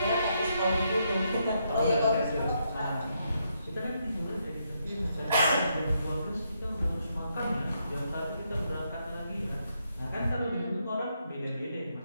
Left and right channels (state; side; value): inverted; both; correlation -0.78